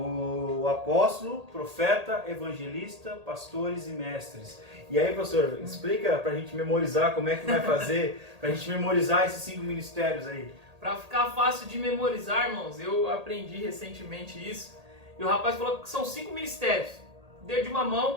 apóstolo, profeta, evangelista, pastores e mestres. E aí, pastor, explica pra gente memorizar como é que vai fazer, pra gente memorizar esses 5 ministérios aí. Para ficar fácil de memorizar, irmãos, eu aprendi recentemente isso. E o rapaz falou que são 5 ministérios. Dedo de uma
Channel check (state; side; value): late; left; 1.8 ms